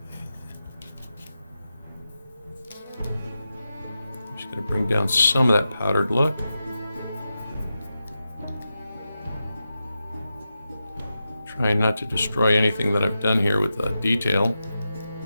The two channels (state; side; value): inverted; both; correlation -0.90